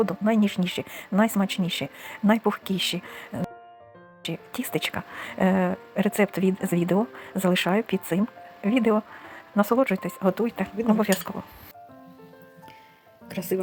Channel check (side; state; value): both; identical; correlation 1.00